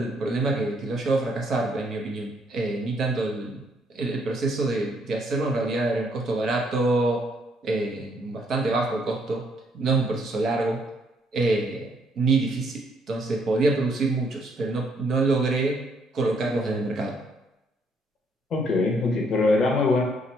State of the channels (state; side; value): normal; both; correlation 0.69